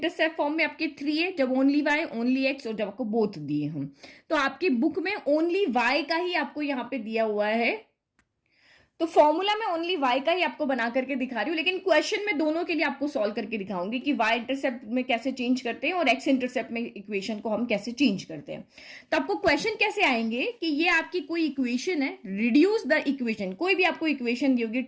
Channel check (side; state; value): both; identical; correlation 1.00